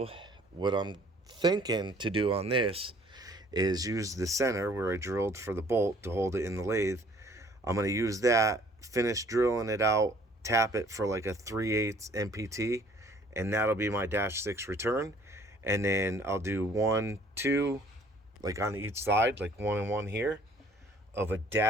what I'm thinking to do on this is use the center where I drilled for the bolt to hold it in the lathe. I'm going to use that, finish drilling it out, tap it for like a 3/8 MPT, and that'll be my -6 return. And then I'll do 1, 2, like on each side, like 1 and 1 here, of a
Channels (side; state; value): both; normal; correlation 0.56